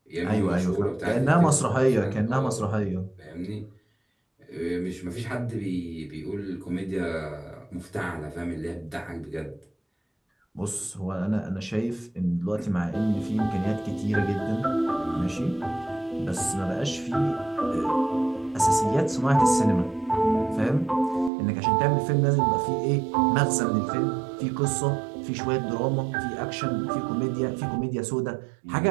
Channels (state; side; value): drops out; left; at 21.3 s